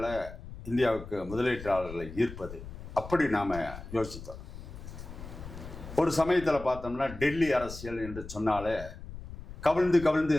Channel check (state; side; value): noise; left; rumble, 12 dB below the sound